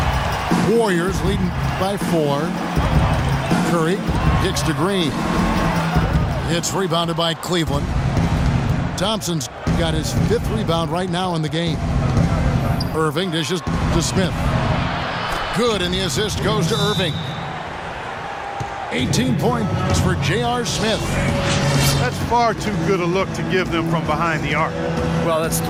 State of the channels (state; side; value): identical; both; correlation 1.00